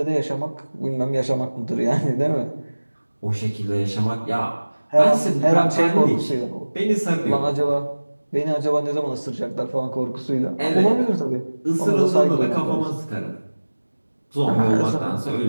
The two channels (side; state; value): both; inverted; correlation -1.00